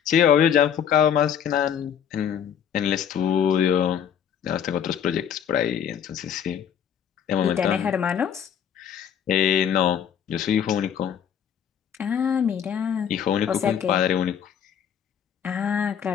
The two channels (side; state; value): right; quieter; 8.5 dB